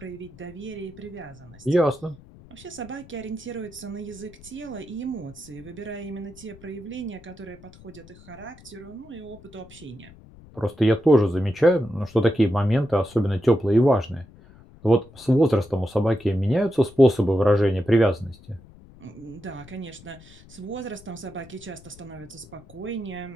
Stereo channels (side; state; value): left; noise; rumble, 22 dB below the sound